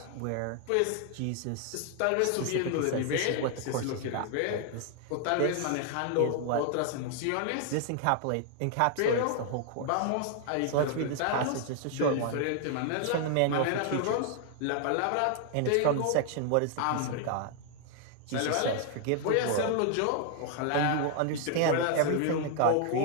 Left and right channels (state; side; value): different; both; correlation 0.00